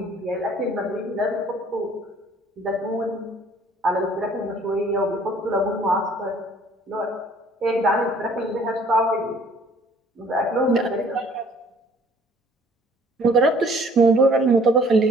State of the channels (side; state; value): both; normal; correlation 0.56